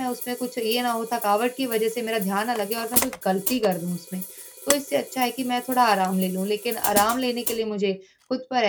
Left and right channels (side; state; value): both; identical; correlation 1.00